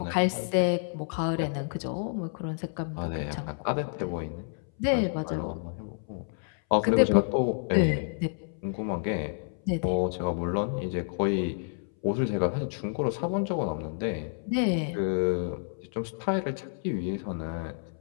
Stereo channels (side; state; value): right; silent; 58 dB below the other